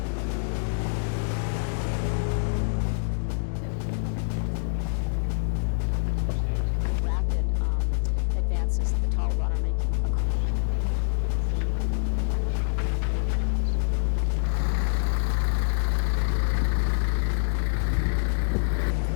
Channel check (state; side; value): silent; right; digital silence